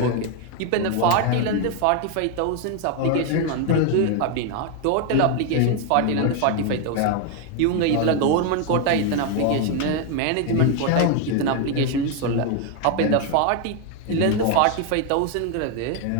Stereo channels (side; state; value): both; different; correlation 0.01